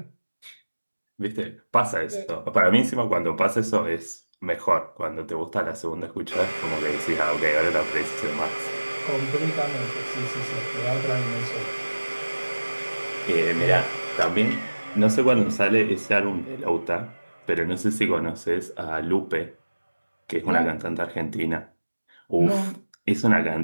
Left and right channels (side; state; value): both; inverted; correlation -1.00